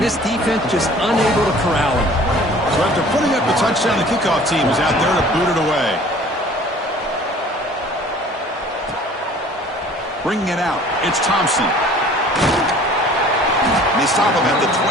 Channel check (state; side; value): normal; both; correlation 0.49